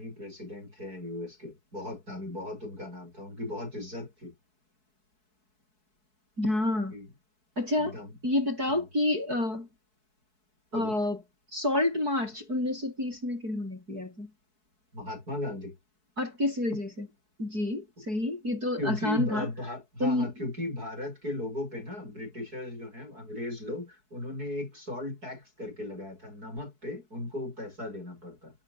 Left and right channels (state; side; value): late; left; 4.6 ms